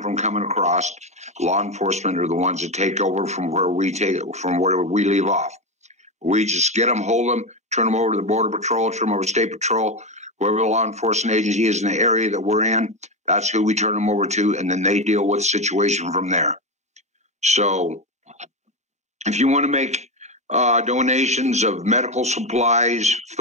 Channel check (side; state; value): both; normal; correlation 0.14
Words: from coming across. Law enforcement are the ones that take over from where we leave off. We just get them, hold them, turn them over to the Border Patrol, turn them over to State Patrol, whoever the law enforcement agency is in the area that we're in, that's who we turn them over to, and then they deal with the situation from there. So if you want to make donations of medical supplies,